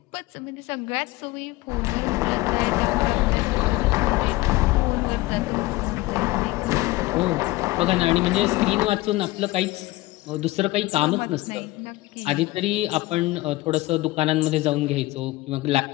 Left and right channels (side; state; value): right; quieter; 19.5 dB